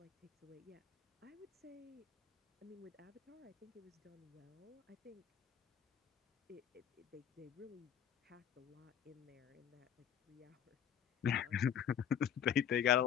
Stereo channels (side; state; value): right; quieter; 8.9 dB